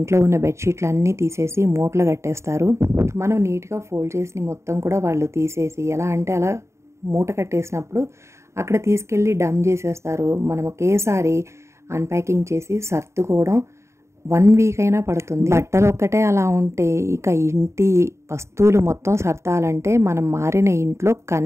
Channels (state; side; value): late; left; 0.14 ms